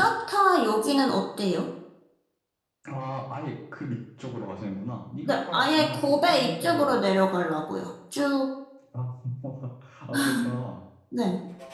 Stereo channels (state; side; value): identical; both; correlation 1.00